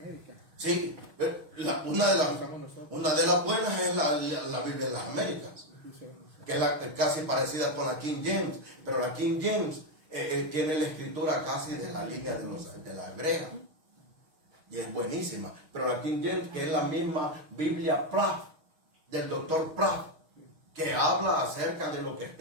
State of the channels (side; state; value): left; late; 6.4 ms